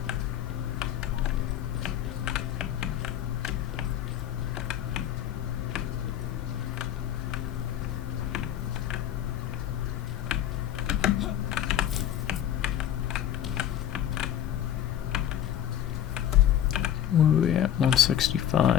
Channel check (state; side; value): quieter; right; 10.8 dB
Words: What are we at?